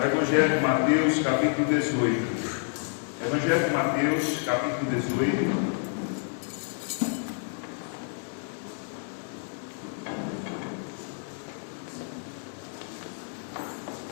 Evangelho de Mateus, capítulo 18. Evangelho de Mateus, capítulo 18.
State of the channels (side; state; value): right; silent; 56 dB below the other